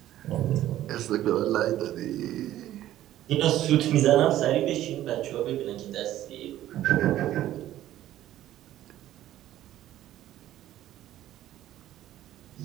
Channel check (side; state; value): left; quieter; 13.3 dB